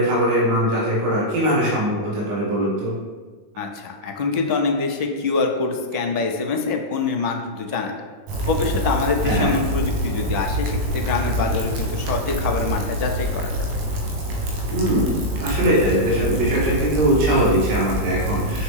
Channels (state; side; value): late; left; 20 ms